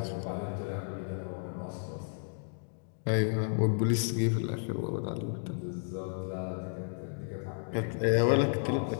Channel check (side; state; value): right; silent; digital silence